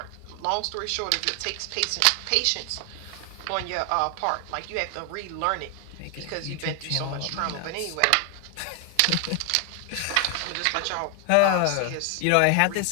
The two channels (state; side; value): different; both; correlation 0.00